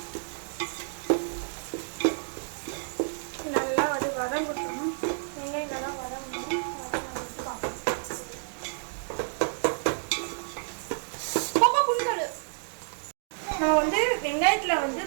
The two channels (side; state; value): left; silent; digital silence